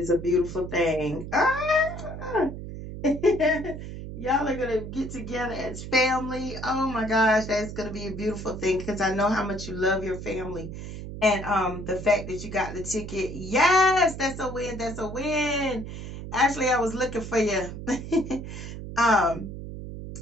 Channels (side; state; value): right; noise; hum, 9 dB below the sound